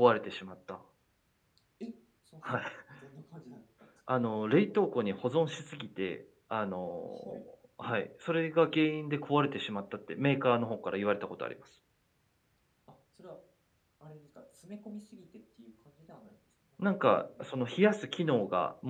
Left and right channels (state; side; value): identical; both; correlation 1.00